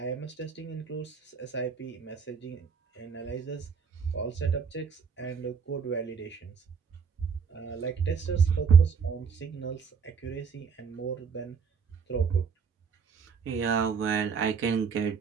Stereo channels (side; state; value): left; quieter; 6.0 dB